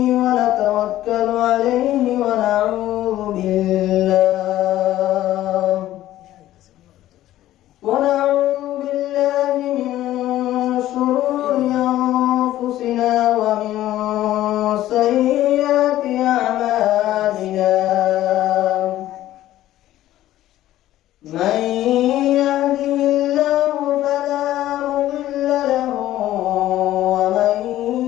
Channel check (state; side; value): quieter; right; 14.0 dB